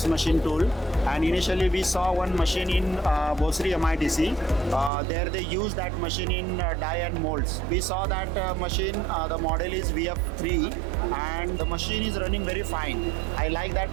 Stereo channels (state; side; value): drops out; left; at 4.9 s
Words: machine tool. And initially, we saw one machine in Bosri MITC. There they use that machine in die and molds. We saw that machine, the model is VF3. And the machine is running very fine. I like that